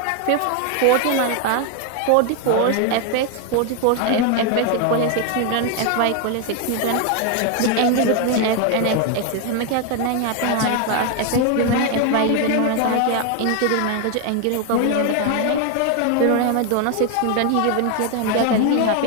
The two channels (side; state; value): both; different; correlation 0.01